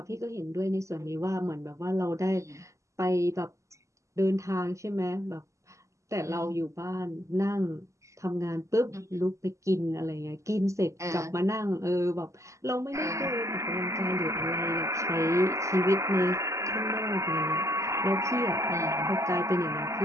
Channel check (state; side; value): late; left; 0.15 ms